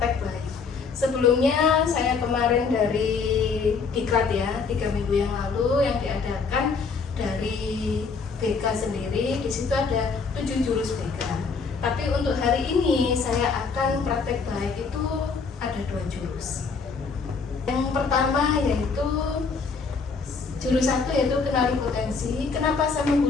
baik. Sebelumnya saya kemarin dari Diklat ya, 3 minggu yang lalu yang diadakan dari BK sendiri. Di situ ada 7 jurus BK. Tapi untuk hari ini saya akan praktek baik itu ada 2 jurus. Yang pertama yaitu jurus 1 yaitu kenali potensi. Kenapa saya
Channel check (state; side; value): quieter; right; 5.0 dB